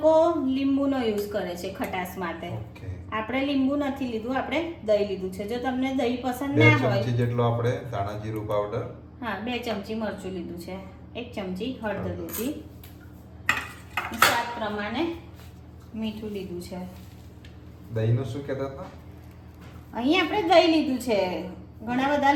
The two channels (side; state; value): both; identical; correlation 1.00